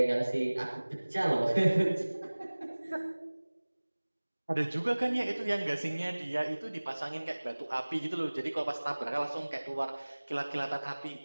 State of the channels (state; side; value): inverted; both; correlation -1.00